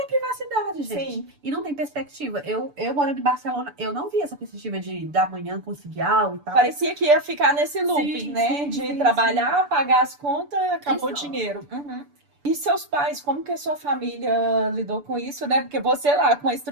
privacidade, gente. sim. E não tem perspectiva. Eu morando em Barcelona, eu não vi essa perspectiva de da manhã conseguir algo e tal. Parecia que ia ficar nesse looping, Sim, né? sim, De sim, trabalhar, pagar as contas, acabou o Isso. dinheiro. Uhum. E seus pais, como que a sua família lidou com isso, né? Porque você lá, com a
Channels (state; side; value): late; left; 6.9 ms